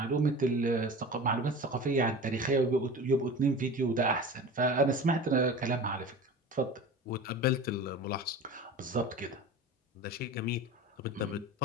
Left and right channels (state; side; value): normal; both; correlation 0.35